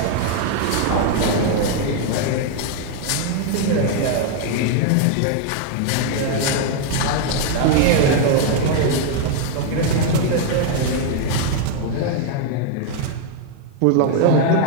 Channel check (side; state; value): both; different; correlation 0.00